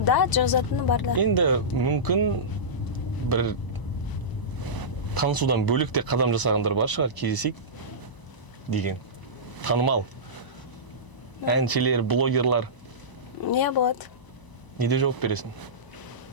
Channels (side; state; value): right; late; 1.0 ms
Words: да, жазатыны бар да. Енді мүмкін бір танысудан бөлек те қадам жасағандар бар шығар, кездесейік деген. Танымал. Әншілер, блогерлар. Не болады. Неде жауап бересің?